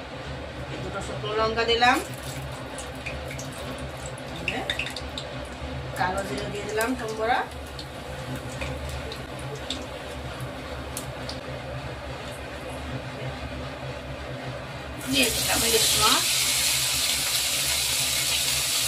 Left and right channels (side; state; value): both; identical; correlation 1.00